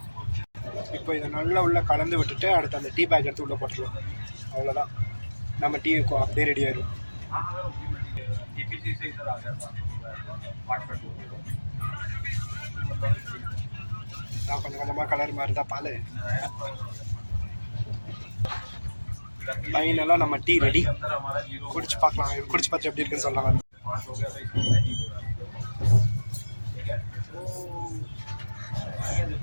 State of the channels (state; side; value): inverted; both; correlation -1.00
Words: இப்போ இதை நல்லா உள்ளே கலந்து விட்டுட்டு அடுத்து அந்த டீ பேக் எடுத்து உள்ளே போட்டுருவோம். அவ்வளோதான், நம்ம டீ அப்படியே ரெடி ஆயிடும். கொஞ்சம் கொஞ்சமாக கலர் மாதிரி தான் பால். ஃபைனலாக நம்ம டீ ரெடி. குடிச்சு பார்க்கலாம், குடிச்சு பார்த்து எப்படி இருக்குன்னு சொல்லலாம்.